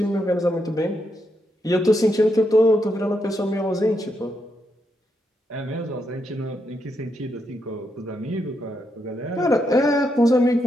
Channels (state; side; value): normal; both; correlation 0.81